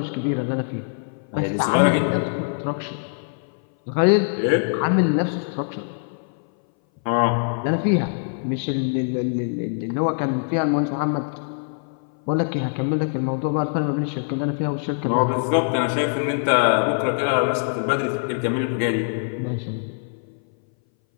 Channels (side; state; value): right; silent; 60 dB below the other